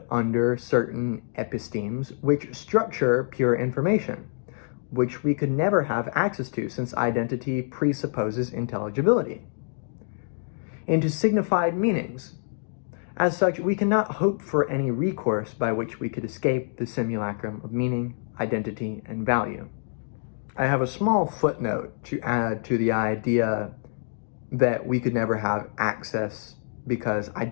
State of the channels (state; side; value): silent; right; digital silence